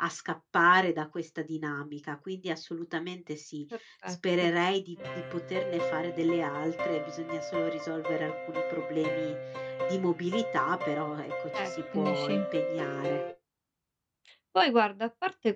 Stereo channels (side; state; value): both; identical; correlation 1.00